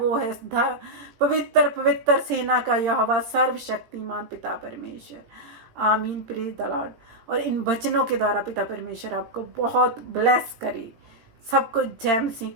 है पवित्र पवित्र सेना का यहोवा, सर्वशक्तिमान पिता परमेश्वर। आमीन, प्रेज द लॉर्ड। और इन वचनों के द्वारा पिता परमेश्वर आपको बहुत ब्लेस करे। सबको जय मसीह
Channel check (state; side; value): late; left; 18 ms